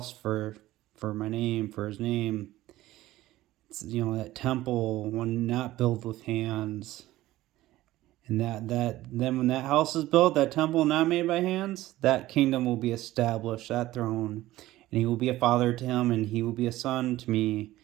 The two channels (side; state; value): left; quieter; 16.2 dB